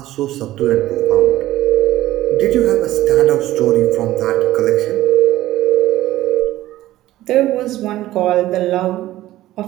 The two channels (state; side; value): quieter; left; 15.2 dB